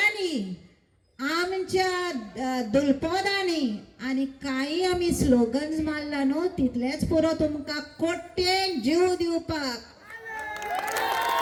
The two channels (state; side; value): identical; both; correlation 1.00